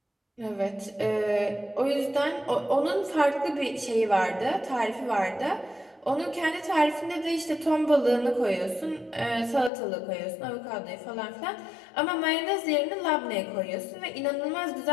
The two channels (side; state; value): right; drops out; at 9.7 s